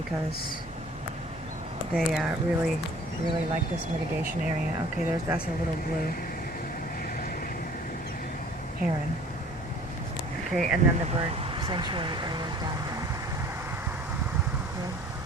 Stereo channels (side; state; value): both; normal; correlation 0.50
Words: they really like this mitigation area. Okay, that's a little blue heron. Okay, and then the bird sanctuary area is down there.